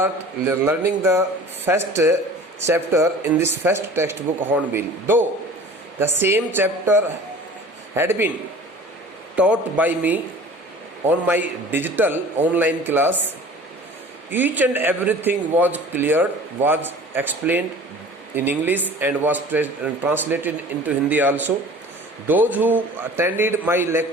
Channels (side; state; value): both; normal; correlation 0.43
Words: learning the first chapter in this first textbook Hornbill. Though the same chapter had been taught by me on my digital online class, each and everything was cleared, was explained in English and was translated into Hindi also. Those who attended my